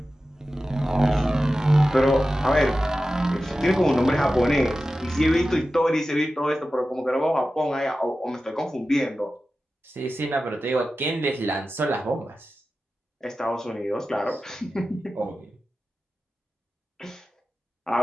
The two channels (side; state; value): both; normal; correlation 0.94